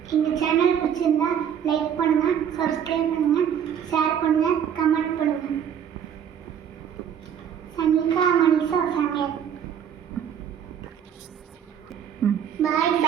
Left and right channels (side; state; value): left; quieter; 8.7 dB